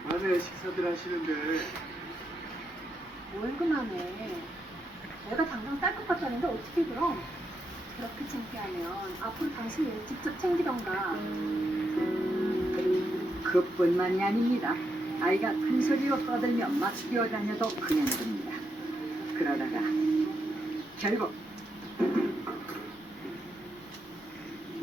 밤에 식사들 하시는데 뭘 그만해. 내가 당장 쌀 것 같다는데 어떻게 그럼? 그렇게 창피하면 앞으로 당신이 일 직접 챙기던가. 그뿐만이 아닙니다. 아이가 큰 소리로 떠들며 막 뛰어다녀도 그냥 됩니다. 그러다가 결국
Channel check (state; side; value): normal; both; correlation 0.82